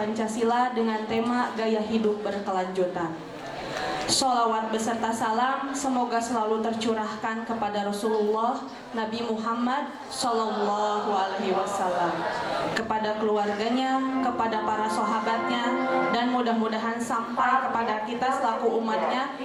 dengan tema gaya hidup berkelanjutan. Sholawat beserta salam semoga selalu tercurahkan kepada Rasulullah Nabi Muhammad Sallallahu Alaihi Wasallam, kepada keluarganya, kepada para sahabatnya, dan mudah-mudahan sampai kepada kita selaku umatnya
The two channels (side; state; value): both; identical; correlation 1.00